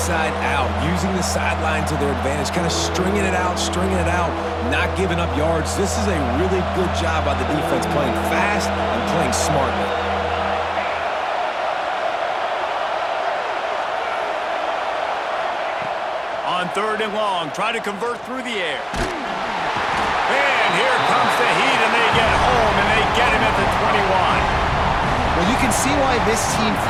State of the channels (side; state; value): both; identical; correlation 1.00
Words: out, using the sideline to their advantage, kind of stringing it out, not giving up yards. This is a really good job by the defense, playing fast and playing smartly. On third and long, try to convert through the air. And here comes the heat, and they get home, and they get him at the 21. Well, you can see why this team